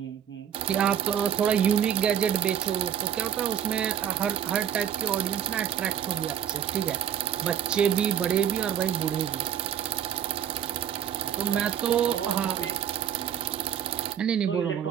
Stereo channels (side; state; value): left; quieter; 9.4 dB